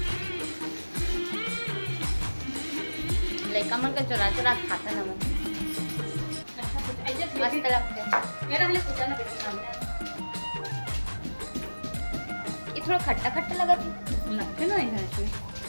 लड़का मन का चुरा चुरा खाता ना मन, मस्त लगता है। ये थोड़ा खट्टा खट्टा लगा लगते ना इसमें।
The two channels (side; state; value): both; inverted; correlation -1.00